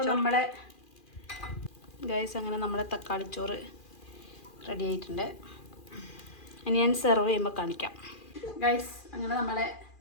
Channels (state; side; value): late; right; 2.4 ms